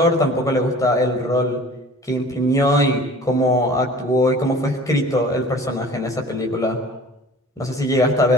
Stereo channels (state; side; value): normal; both; correlation 0.45